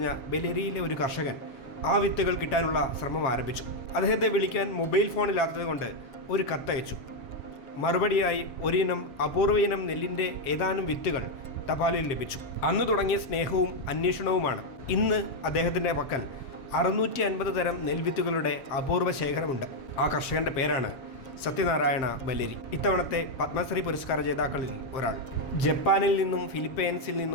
ബല്ലേരിയിലെ ഒരു കർഷകൻ ആ വിത്തുകൾ കിട്ടാനുള്ള ശ്രമം ആരംഭിച്ചു. അദ്ദേഹത്തെ വിളിക്കാൻ മൊബൈൽ ഫോണില്ലാത്തതുകൊണ്ട് ഒരു കത്തയച്ചു. മറുപടിയായി ഒരിനം അപൂർവ ഇനം നെല്ലിൻ്റെ ഏതാനും വിത്തുകൾ തപാലിൽ ലഭിച്ചു. അന്ന് തുടങ്ങിയ സ്നേഹവും അന്വേഷണവുമാണ്. ഇന്ന് അദ്ദേഹത്തിൻ്റെ പക്കൽ 650 തരം നെൽവിത്തുകളുടെ അപൂർവ ശേഖരമുണ്ട്. ആ കർഷകന്റെ പേരാണ് സത്യനാരായണ ബല്ലേരി. ഇത്തവണത്തെ പത്മശ്രീ പുരസ്കാര ജേതാക്കളിൽ ഒരാൾ. ജപ്പാനിൽ നിന്നും ഫിലിപ്പൈൻസിൽ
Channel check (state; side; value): late; right; 7.5 ms